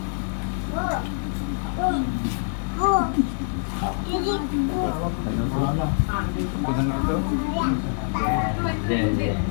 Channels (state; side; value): silent; right; 62 dB below the other